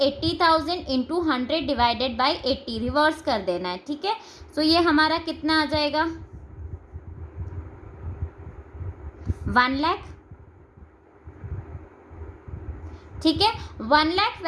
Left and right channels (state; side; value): identical; both; correlation 1.00